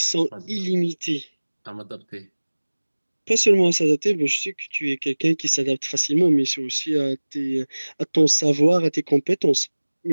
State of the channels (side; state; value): both; inverted; correlation -1.00